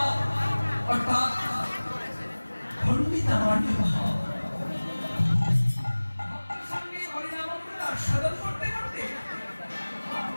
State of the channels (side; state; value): both; inverted; correlation -1.00